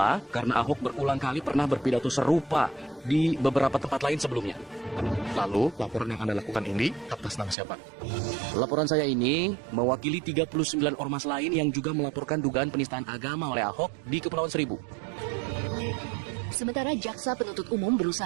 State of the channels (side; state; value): left; drops out; at 7.6 s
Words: karena Ahok berulang kali pernah berpidato serupa di beberapa tempat lain sebelumnya. Lalu, laporan yang Anda lakukan ini atas nama siapa? Laporan saya ini mewakili 39 ormas lain yang juga melaporkan dugaan penistaan agama oleh Ahok di Kepulauan Seribu. Sementara jaksa penuntut umum